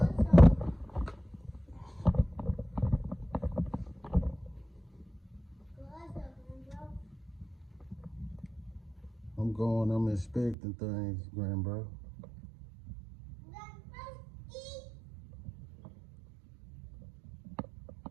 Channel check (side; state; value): left; drops out; at 10.6 s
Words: I'm inspecting things, grandbro.